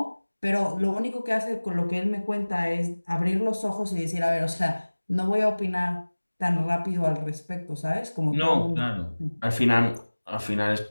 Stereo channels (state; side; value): inverted; both; correlation -1.00